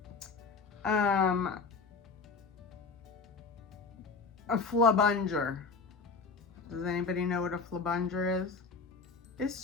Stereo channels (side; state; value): right; quieter; 4.6 dB